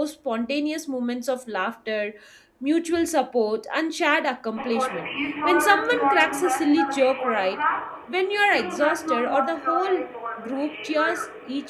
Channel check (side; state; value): both; identical; correlation 1.00